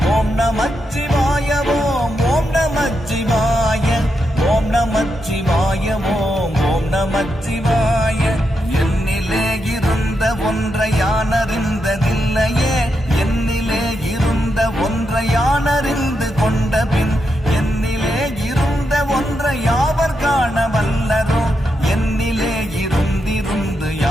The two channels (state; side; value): normal; both; correlation 0.84